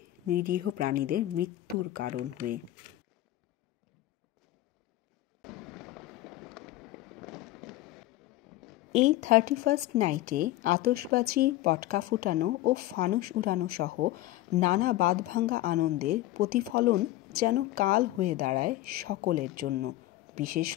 নিরীহ প্রাণীদের মৃত্যুর কারণ হয়ে। এই 31st নাইটে আতশবাজি, পটকা ফুটানো ও ফানুস উড়ানো সহ নানা বাঁধভাঙা আনন্দের প্রতিফলন যেন কাল হয়ে দাঁড়ায় সকলের জন্য। বিশেষ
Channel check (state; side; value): quieter; right; 15.9 dB